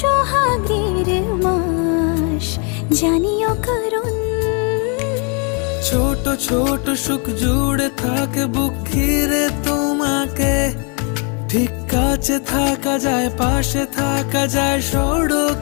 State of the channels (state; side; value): quieter; right; 36.2 dB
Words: মাস, জানিও কারণ ছোট ছোট সুখ জুড়ে থাকে বুক ঘিরে তোমাকে। ঠিক কাছে থাকা যায়, পাশে থাকা যায়